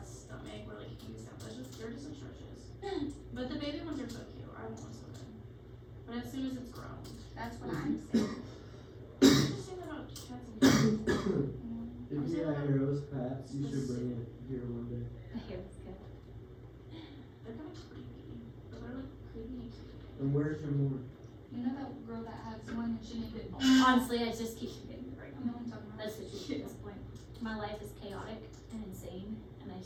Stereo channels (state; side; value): identical; both; correlation 1.00